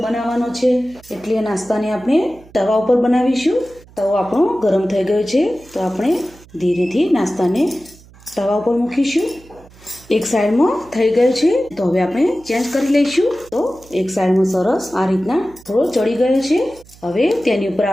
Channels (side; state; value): right; noise; hum, 24 dB below the sound